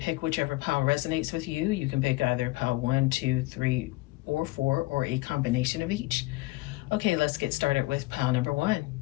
pick whichever pile resonates with you. You can pick either pile 1, 2, 3, or 4, or a combination of each. Okay, let's get started with pile number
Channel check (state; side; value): quieter; right; 20.5 dB